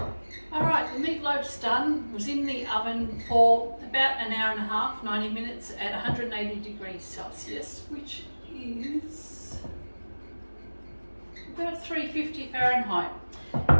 All right, the meatloaf's done. It was in the oven for about an hour and a half, 90 minutes at 180 degrees Celsius, which is about 350 Fahrenheit.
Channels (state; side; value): inverted; both; correlation -1.00